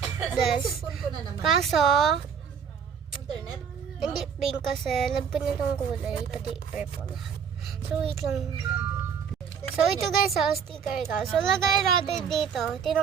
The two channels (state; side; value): quieter; left; 7.1 dB